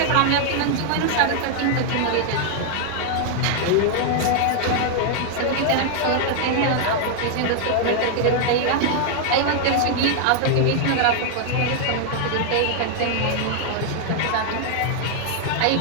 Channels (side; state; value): both; different; correlation 0.00